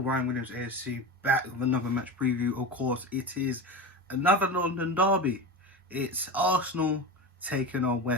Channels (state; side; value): normal; both; correlation 0.25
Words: Ryan Williams ASC back with another match preview. Of course, it is another London derby. It's Arsenal taking on